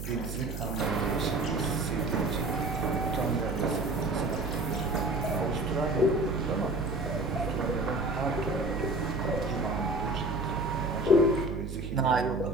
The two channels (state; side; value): noise; right; hum, 6 dB below the sound